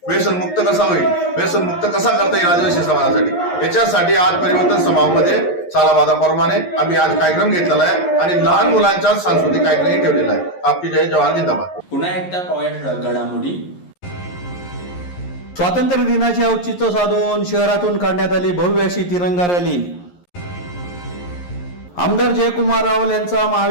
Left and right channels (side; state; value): right; late; 11 ms